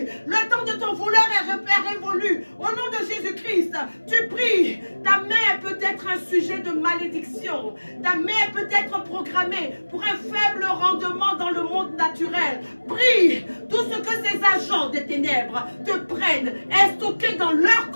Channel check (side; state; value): both; inverted; correlation -1.00